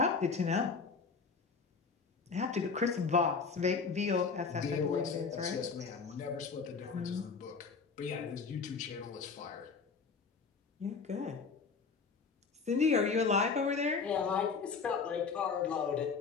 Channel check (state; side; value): quieter; right; 5.1 dB